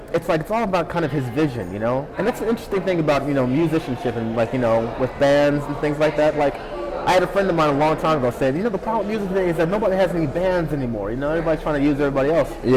it's like, it's all about kind of his vision, And that's an interesting thing about, musicianship and like, with bands and things like that. Like, I had a friend of mine a long time ago said, the problem with music today is that nobody has any bands anymore. Everybody's trying to use everybody else.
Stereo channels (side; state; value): both; identical; correlation 1.00